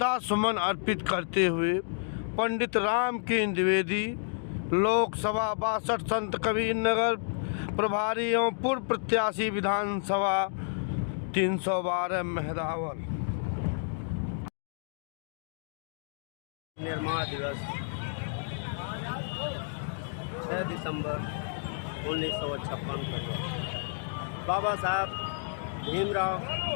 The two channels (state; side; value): silent; right; digital silence